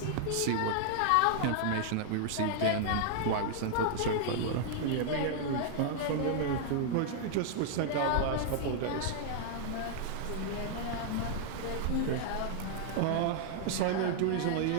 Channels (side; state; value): both; different; correlation -0.01